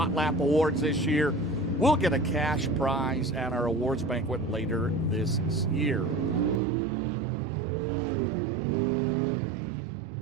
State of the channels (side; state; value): left; drops out; at 6.6 s